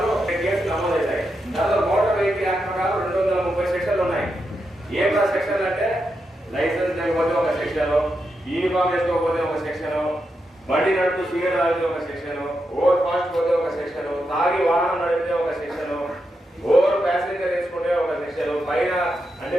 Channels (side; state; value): both; normal; correlation 0.85